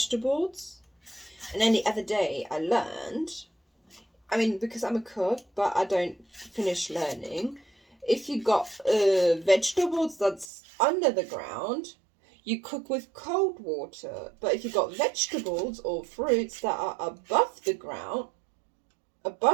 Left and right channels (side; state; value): left; drops out; at 10.5 s